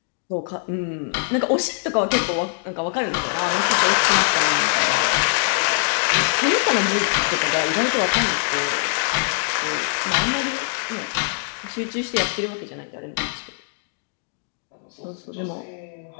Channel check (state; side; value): silent; right; digital silence